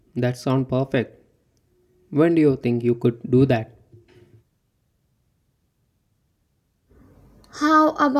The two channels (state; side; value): identical; both; correlation 1.00